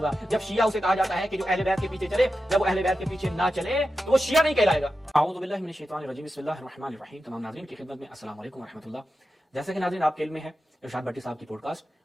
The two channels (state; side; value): normal; both; correlation 0.91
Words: جب شیعہ اسے کہا جاتا ہے کہ جو اہل بیت کے پیچھے چلے، جب وہ اہل بیت کے پیچھے نہ چلے تو وہ شیعہ نہیں کہلائے گا۔ اعوذ باللہ من الشیطان الرجیم، بسم اللہ الرحمن الرحیم۔ تمام ناظرین کی خدمت میں السلام علیکم ورحمۃ اللہ۔ جیسا کہ ناظرین آپ کے علم میں ہے، ارشاد بھٹی صاحب کی پوڈ کاسٹ